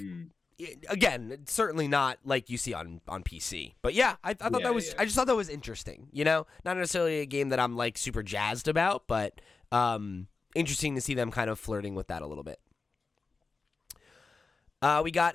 again, it's certainly not like you see on PC. But yeah, I thought that was. I just thought that was interesting. You know, not necessarily a game that I'm like super jazzed about, but interesting to see them kind of flirting with that a little bit. We got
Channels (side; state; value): right; quieter; 4.2 dB